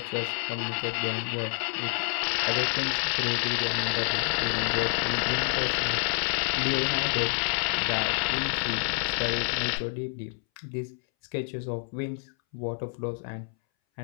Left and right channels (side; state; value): right; silent; 59 dB below the other